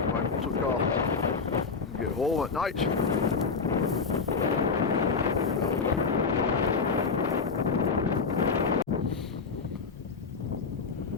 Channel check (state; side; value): quieter; right; 5.0 dB